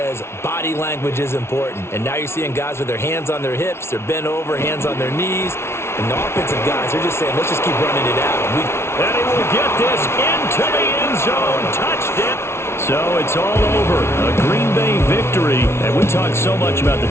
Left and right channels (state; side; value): late; right; 0.12 ms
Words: body language is important. And now you're seeing guys with their hands on their hips, they're bent over, hands on their knees. And the offensive guys, they're just saying, let's just keep running it out. And he will get this into the end zone. So it's all over. A Green Bay victory. And we talked so much about the